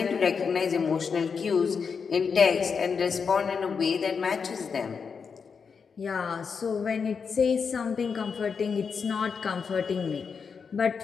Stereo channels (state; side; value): quieter; right; 5.8 dB